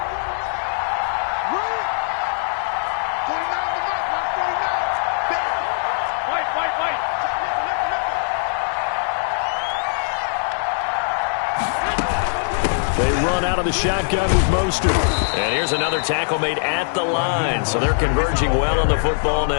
They run out of the shotgun with Mostert. And here's another tackle made at the line. So they're converging well on the football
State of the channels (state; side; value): silent; right; digital silence